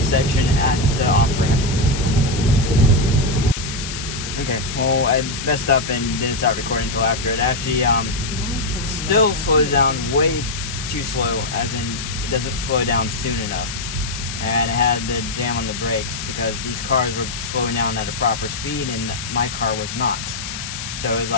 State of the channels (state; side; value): noise; left; hiss, 7 dB below the sound